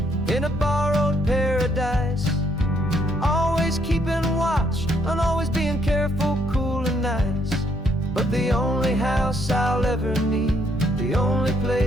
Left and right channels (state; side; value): normal; both; correlation 0.71